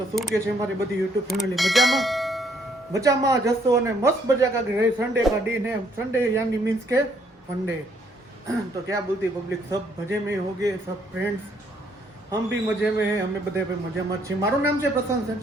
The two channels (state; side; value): normal; both; correlation 0.68